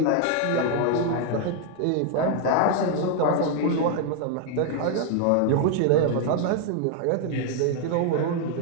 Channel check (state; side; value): different; both; correlation 0.00